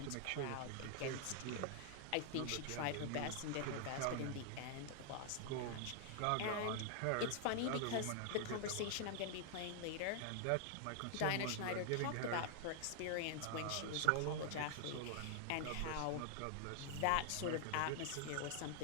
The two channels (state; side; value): different; both; correlation 0.00